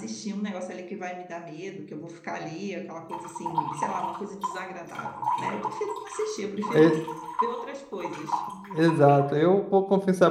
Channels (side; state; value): both; identical; correlation 1.00